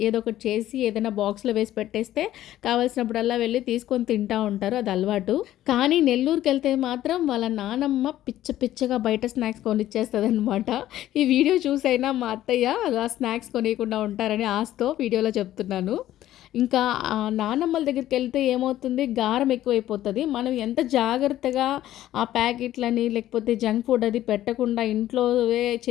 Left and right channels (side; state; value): right; quieter; 13.4 dB